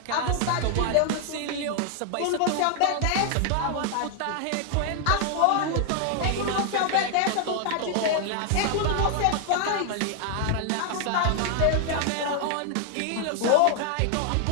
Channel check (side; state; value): both; different; correlation 0.00